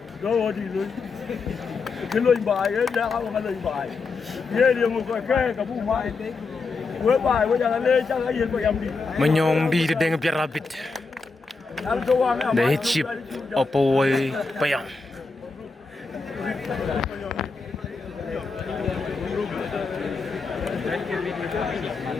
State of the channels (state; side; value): quieter; right; 4.3 dB